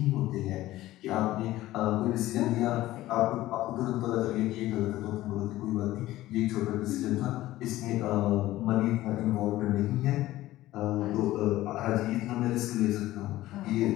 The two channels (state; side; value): quieter; right; 15.9 dB